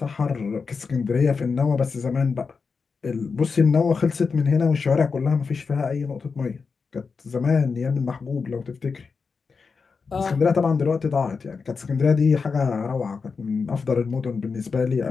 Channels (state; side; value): quieter; right; 5.1 dB